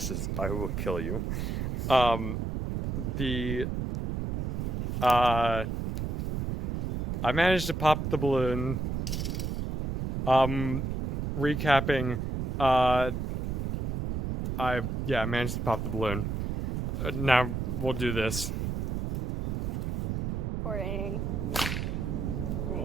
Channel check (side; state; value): right; noise; rumble, 1 dB below the sound